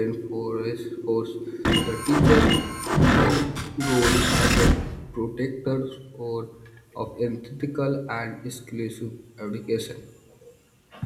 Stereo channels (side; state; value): both; identical; correlation 1.00